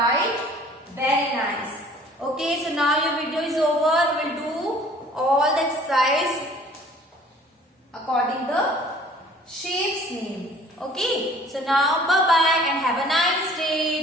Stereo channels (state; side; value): normal; both; correlation 0.52